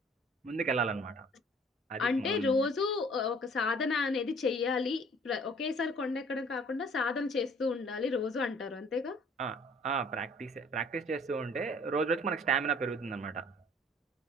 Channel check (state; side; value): normal; both; correlation 0.55